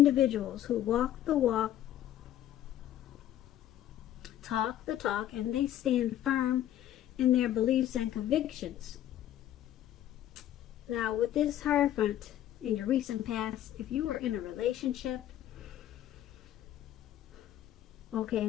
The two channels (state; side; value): quieter; right; 12.2 dB